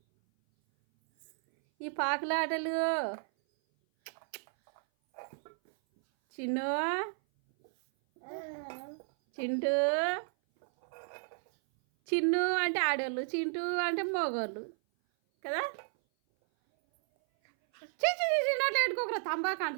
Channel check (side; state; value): left; silent; 56 dB below the other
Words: ఈ పాకులాటలు చిన్ను చింటూ చిన్ను అంటే ఆడోళ్ళు చింటూ అంటే మగోళ్ళు కదా చిన్నట్లు పెట్టుకోకరా తంబాకు